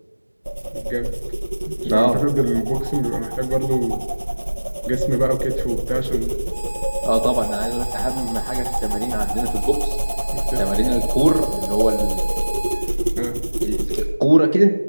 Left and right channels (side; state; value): both; inverted; correlation -1.00